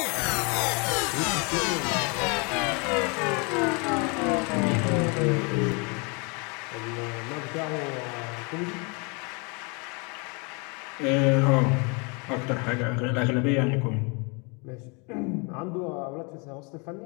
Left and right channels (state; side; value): quieter; right; 32.1 dB